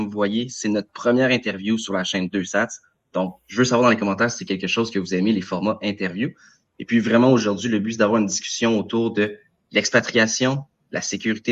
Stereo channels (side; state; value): both; identical; correlation 1.00